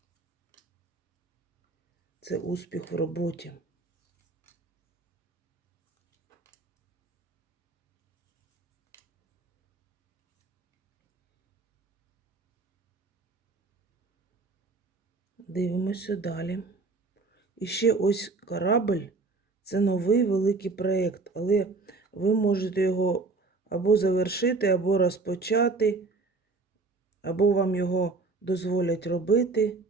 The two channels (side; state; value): left; quieter; 3.7 dB